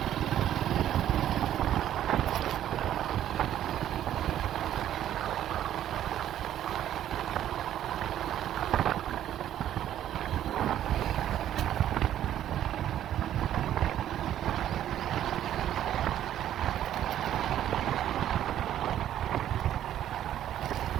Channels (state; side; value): quieter; left; 11.5 dB